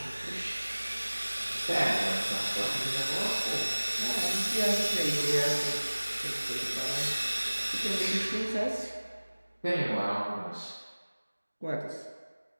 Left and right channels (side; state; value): both; inverted; correlation -1.00